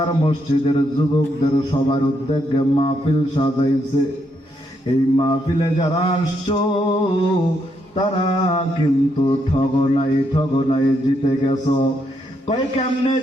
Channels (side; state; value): both; normal; correlation 0.77